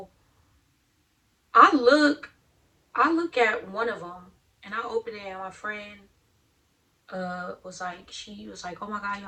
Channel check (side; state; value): both; identical; correlation 1.00